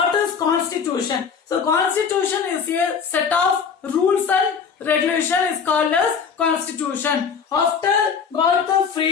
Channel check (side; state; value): right; quieter; 6.3 dB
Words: is constitution? So constitution is a set of rules and regulation is called as constitution. After got the